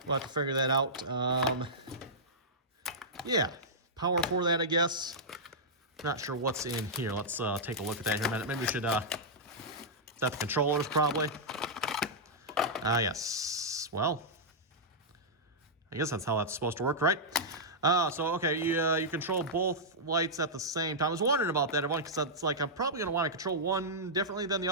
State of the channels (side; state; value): both; normal; correlation -0.10